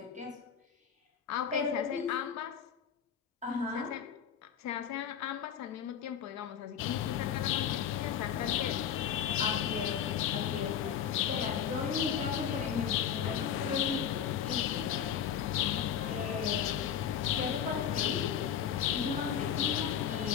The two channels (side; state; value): right; quieter; 8.5 dB